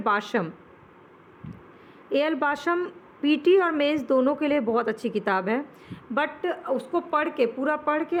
AL Basham PT और मेंस दोनों के लिए बहुत अच्छी किताब है, बट उसको पूरा पढ़ के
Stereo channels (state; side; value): identical; both; correlation 1.00